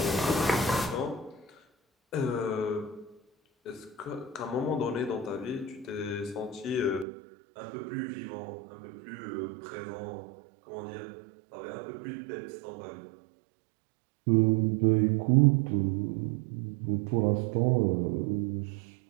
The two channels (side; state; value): left; drops out; at 7.1 s